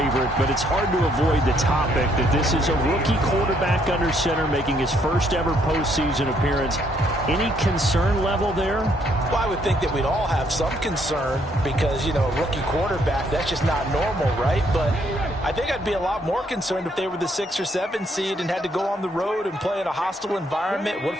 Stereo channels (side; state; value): both; normal; correlation 0.70